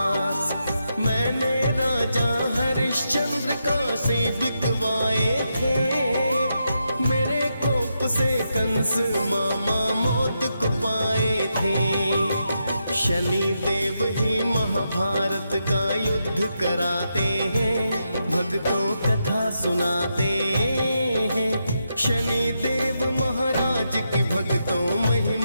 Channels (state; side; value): inverted; both; correlation -0.84